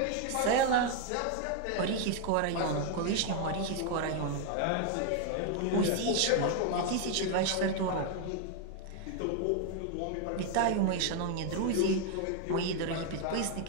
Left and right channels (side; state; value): both; different; correlation 0.01